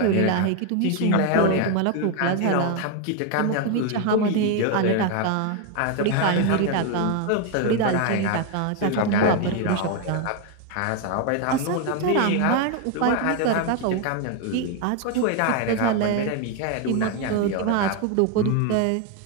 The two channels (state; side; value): different; both; correlation 0.02